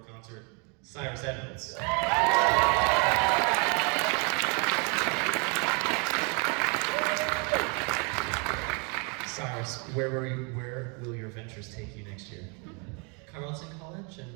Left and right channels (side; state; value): left; quieter; 34.3 dB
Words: concert, Cyrus Edwards. Cyrus, where will your ventures take you next year? Carleton College